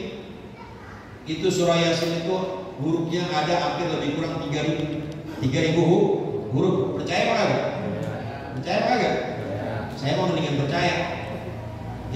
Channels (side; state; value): both; identical; correlation 1.00